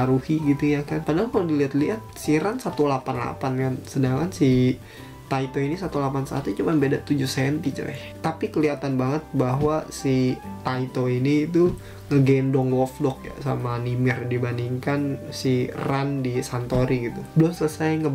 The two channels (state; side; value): identical; both; correlation 1.00